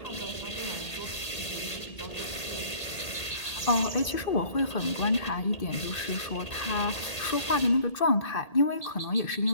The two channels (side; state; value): right; late; 1.8 ms